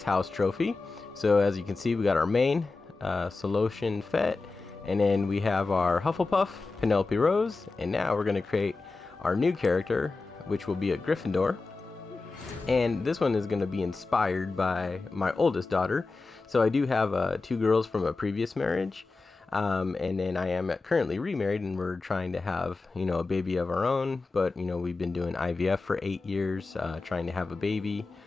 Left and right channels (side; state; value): right; quieter; 3.8 dB